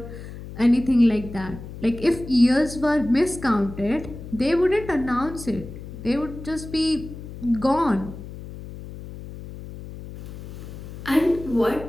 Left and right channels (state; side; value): noise; left; hum, 12 dB below the sound